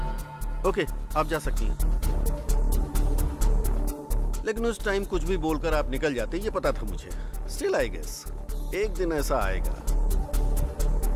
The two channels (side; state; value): both; identical; correlation 1.00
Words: ओके, आप जा सकती हैं। लेकिन उस टाइम कुछ भी बोलकर आप निकल जाते, ये पता था मुझे। स्टिल आई गेस एक दिन ऐसा आएगा।